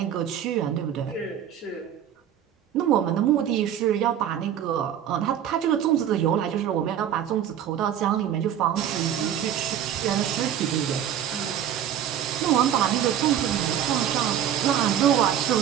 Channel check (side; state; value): left; quieter; 10.0 dB